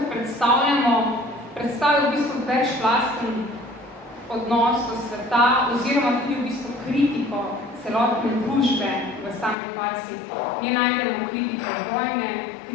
predstavljamo, predstavil v bistvu večplasten odnos do sveta oziroma tudi v bistvu kritiko celotne družbe v sami farsi. Nje najdemo kritiko vojne,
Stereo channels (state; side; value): drops out; right; at 9.6 s